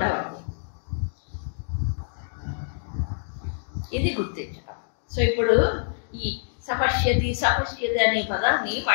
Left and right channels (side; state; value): right; silent; digital silence